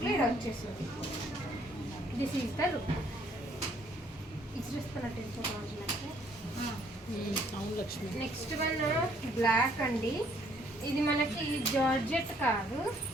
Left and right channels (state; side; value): normal; both; correlation 0.64